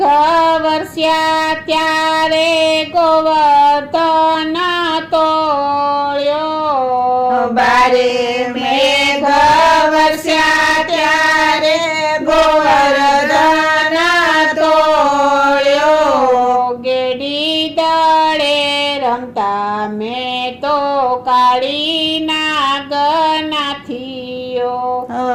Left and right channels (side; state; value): both; identical; correlation 1.00